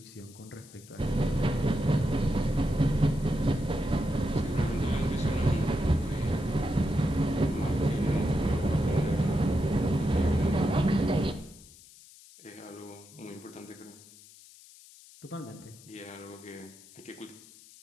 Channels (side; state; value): left; noise; hiss, 22 dB below the sound